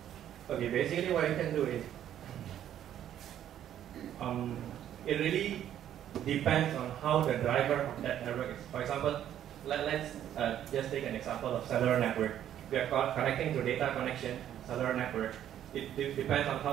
Okay, basically what you can do is, it really depends on how the driver of that network is. For example, let's just take an example of cellular network. We are connecting to data connection, cellular network. It depends on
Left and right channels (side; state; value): left; quieter; 10.8 dB